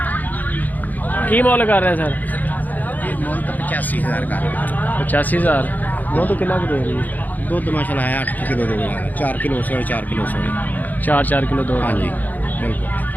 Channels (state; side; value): late; right; 0.082 ms